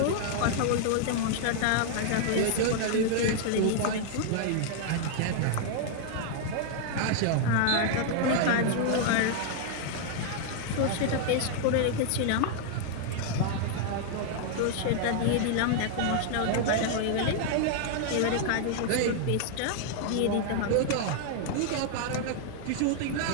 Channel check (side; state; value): both; different; correlation 0.00